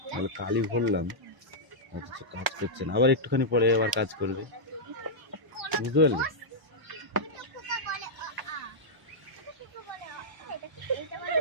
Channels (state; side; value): late; left; 1.0 ms